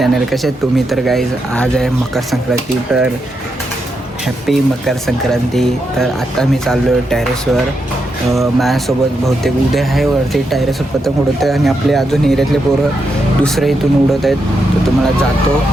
कसे आहेत तुम्ही? तर गाईज आज आहे मकर संक्रांती, तर हॅपी मकर संक्रांती. तर आता मी चाललो आहे टेरेसवर. माझ्यासोबत बहुतेक उद्या आहे वरती टेरेसवर पतंग उडवत आहे आणि आपले अजून एरियातले पोरं दुसरे इथून उडवत आहेत. तर तुम्हाला जातो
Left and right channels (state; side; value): normal; both; correlation 0.83